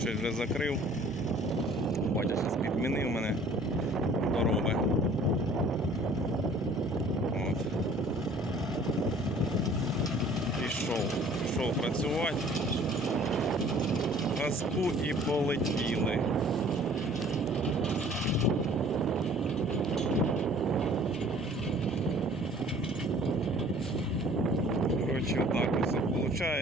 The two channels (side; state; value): both; normal; correlation 0.52